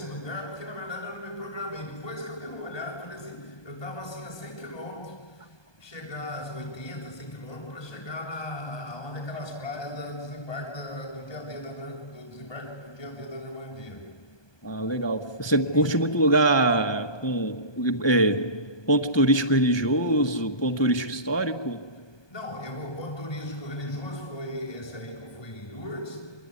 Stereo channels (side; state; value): right; late; 1.2 ms